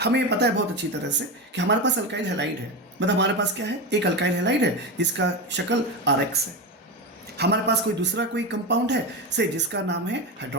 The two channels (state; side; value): normal; both; correlation 0.17